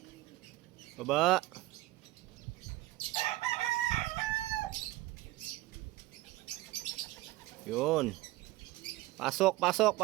Baba. Yun. Pasok, pasok,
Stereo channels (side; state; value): left; quieter; 18.0 dB